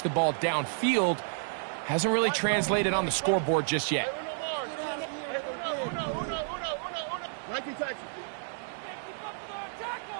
the ball downfield, hasn't really translated on the scoreboard just yet.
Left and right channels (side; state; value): left; silent; 57 dB below the other